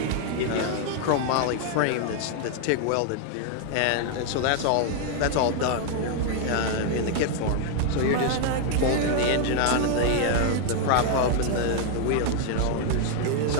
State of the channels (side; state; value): both; different; correlation 0.00